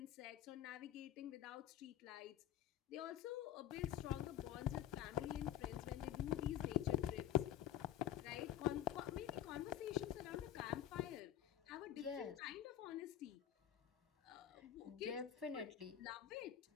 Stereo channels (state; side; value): quieter; right; 10.9 dB